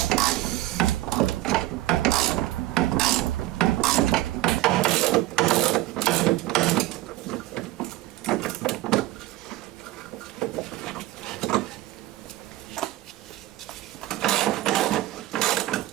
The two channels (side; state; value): left; quieter; 16.8 dB